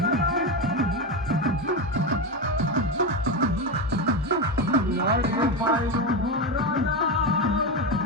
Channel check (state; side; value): normal; both; correlation 0.14